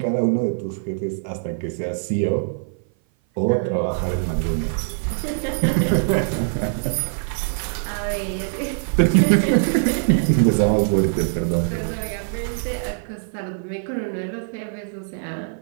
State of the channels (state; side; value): silent; left; 57 dB below the other